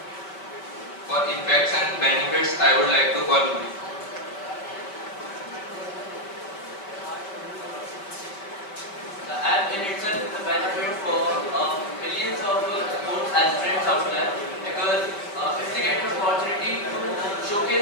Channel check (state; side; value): late; right; 5.1 ms